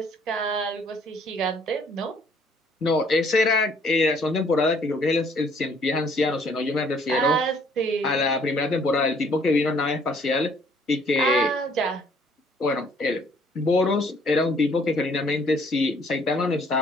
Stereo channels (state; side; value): normal; both; correlation 0.61